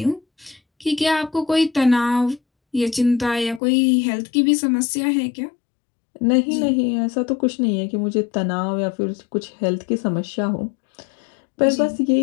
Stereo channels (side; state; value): right; drops out; at 3.6 s